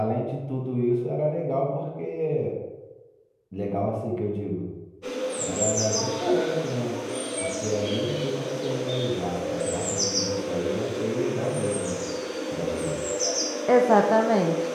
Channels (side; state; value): both; identical; correlation 1.00